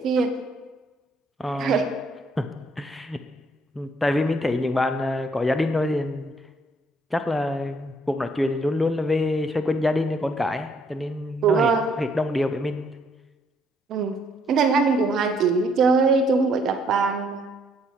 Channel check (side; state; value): both; normal; correlation 0.68